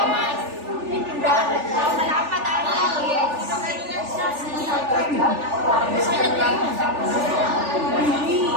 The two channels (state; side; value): late; left; 3.4 ms